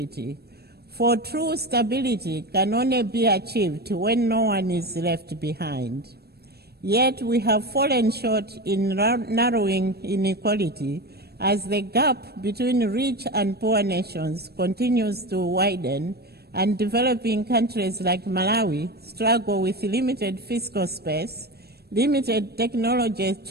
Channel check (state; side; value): late; left; 0.47 ms